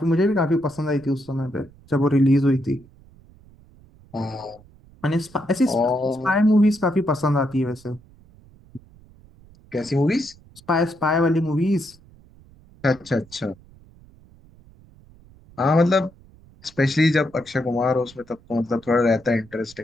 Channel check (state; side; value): noise; right; rumble, 26 dB below the sound